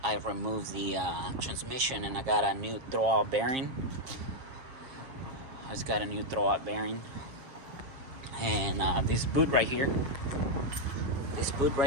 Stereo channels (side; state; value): left; late; 7.3 ms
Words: I removed the transmission, and I got a new throwout bearing. It's got a new throwout bearing, and this boot right here. This boot